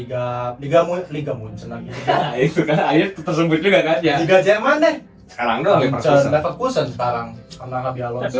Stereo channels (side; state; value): both; identical; correlation 1.00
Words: Munchen lagi. Nah, itu kan akhirnya tersebut juga kan ya. Liga Jerman deh. Sekarang doang Leverkusen sekarang karena Xabi Tapi Alonso.